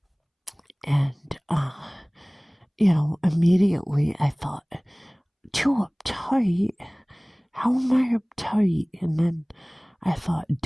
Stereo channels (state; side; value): identical; both; correlation 1.00